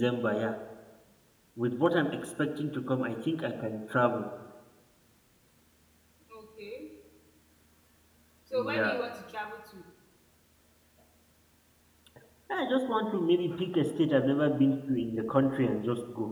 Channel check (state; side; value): identical; both; correlation 1.00